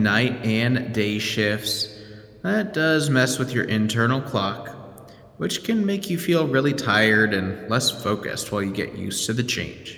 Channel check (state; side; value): identical; both; correlation 1.00